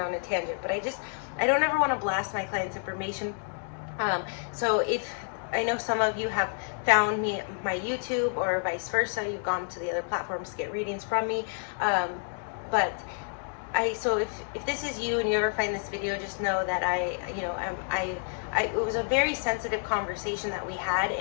on a tangent, but I don't ever want to blast my clients' information. So if I know some of you have found me my YouTube, or vice versa, you've gone to the other platforms to get readings from me, but so if this is you and you ever find this video, just know that it was a very sensitive conversation that we had,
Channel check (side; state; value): right; silent; 58 dB below the other